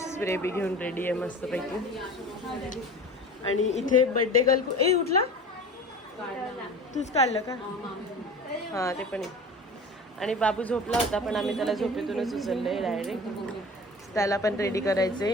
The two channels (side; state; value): both; normal; correlation 0.38